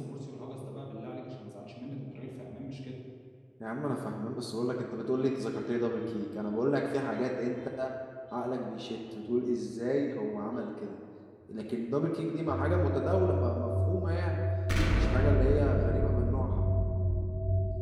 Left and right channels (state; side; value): identical; both; correlation 1.00